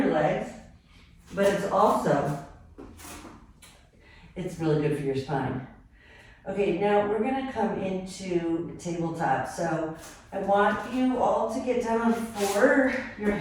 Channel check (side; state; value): both; identical; correlation 1.00